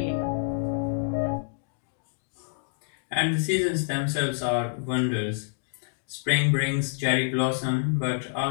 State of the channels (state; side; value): silent; right; digital silence